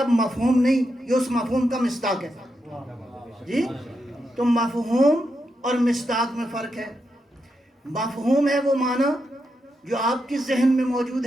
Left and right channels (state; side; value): normal; both; correlation 0.84